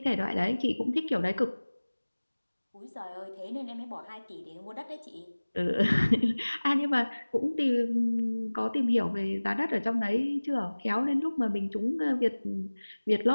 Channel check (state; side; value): inverted; both; correlation -1.00